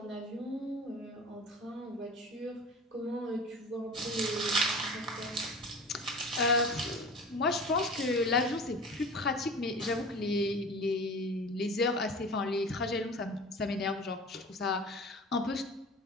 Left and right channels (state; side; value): normal; both; correlation 0.37